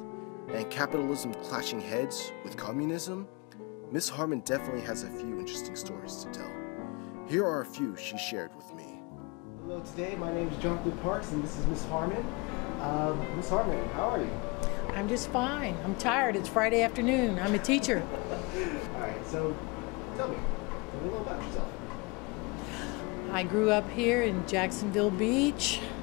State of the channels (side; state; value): right; quieter; 27.7 dB